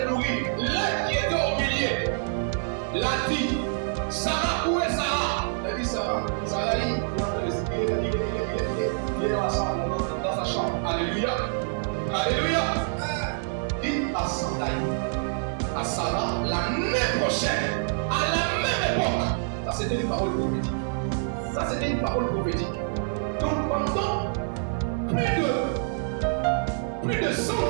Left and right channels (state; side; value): silent; left; 61 dB below the other